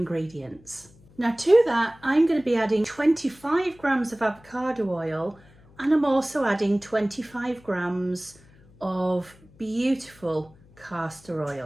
Now to that, I'm going to be adding 25 grams of avocado oil, and I'm also adding 25 grams of beautiful castor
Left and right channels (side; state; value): left; noise; hum, 27 dB below the sound